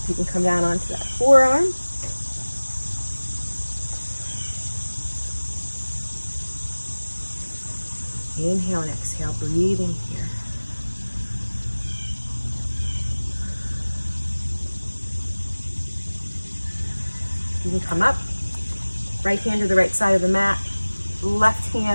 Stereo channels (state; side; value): inverted; both; correlation -1.00